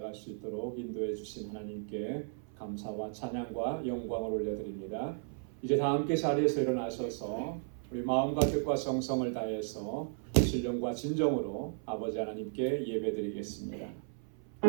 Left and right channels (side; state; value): left; silent; 54 dB below the other